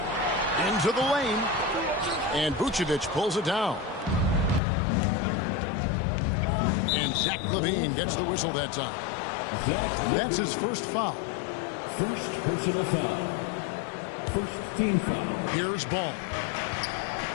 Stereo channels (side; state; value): right; drops out; at 4.6 s